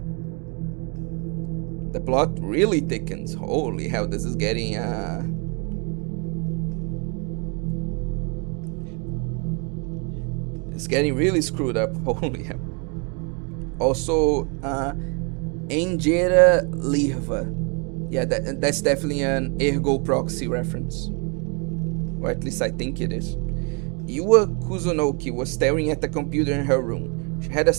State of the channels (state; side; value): quieter; left; 34.9 dB